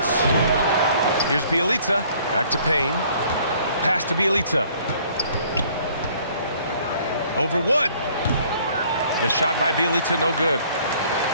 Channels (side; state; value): both; inverted; correlation -0.58